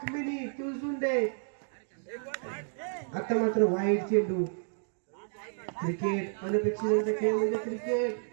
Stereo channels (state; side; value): silent; left; digital silence